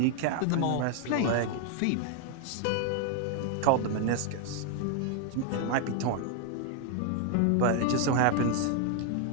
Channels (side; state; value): both; different; correlation 0.00